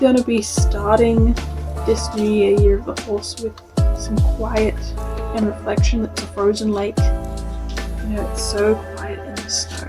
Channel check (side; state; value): both; identical; correlation 1.00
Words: to be starting this new year of the horse with some quiet and reflection. It's a frozen lake. You know, it's so quiet in the snow.